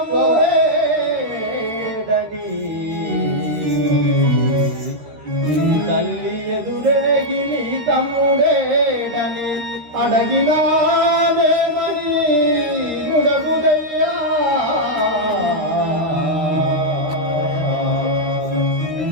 నీ తల్లి ఎదురేగి నీ తమ్ముడేడని అడగినాదేమని గుడగుదయ్యా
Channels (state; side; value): late; left; 13 ms